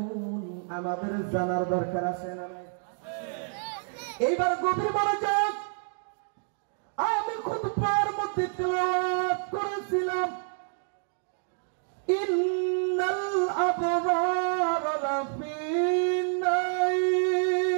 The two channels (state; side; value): silent; left; 59 dB below the other